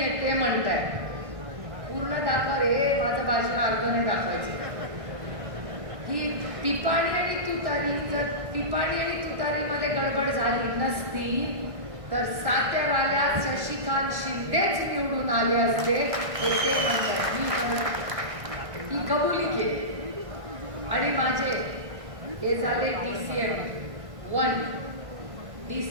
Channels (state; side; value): late; left; 1.6 ms